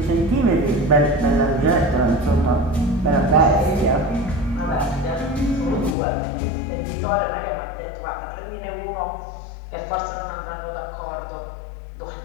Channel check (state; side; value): drops out; right; at 6.0 s